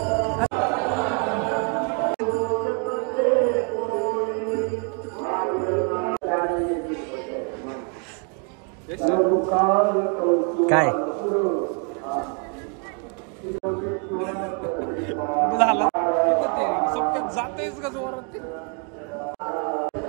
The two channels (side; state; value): left; quieter; 38.7 dB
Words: काय झालं जातेच का जोरात.